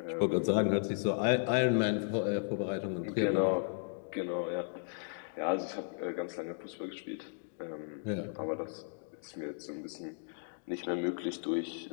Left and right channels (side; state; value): right; silent; digital silence